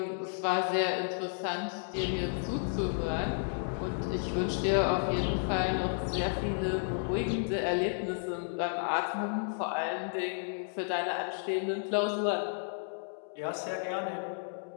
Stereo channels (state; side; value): silent; right; digital silence